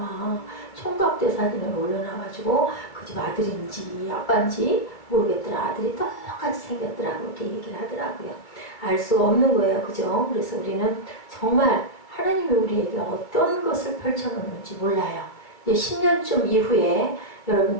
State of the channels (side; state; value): right; late; 2.3 ms